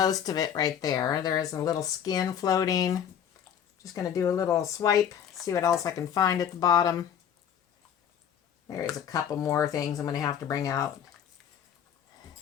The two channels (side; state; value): right; quieter; 8.9 dB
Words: of it right there. There's a little skin floating. Just going to do a little swipe, see what else I can find at the bottom. There is a couple more things I'm going to have to bring out.